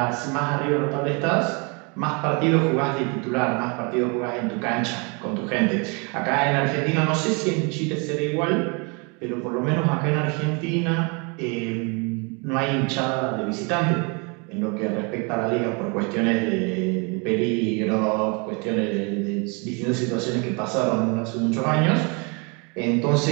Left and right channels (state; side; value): quieter; left; 32.4 dB